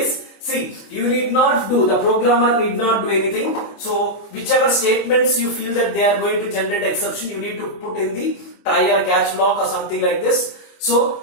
See, the programmer need not do anything. So, whichever statements you feel that they are going to generate exception, you need to put in the try or catch block or something like this.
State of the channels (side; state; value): right; late; 25 ms